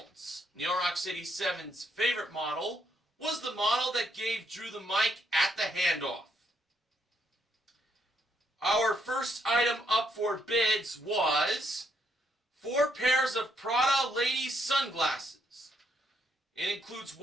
New York City 7's favorite model, was the model that gave Drew the mic at the handoff. Our first item up for bids was 4 pairs of Prada ladies sunglasses. It includes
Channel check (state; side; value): normal; both; correlation 0.74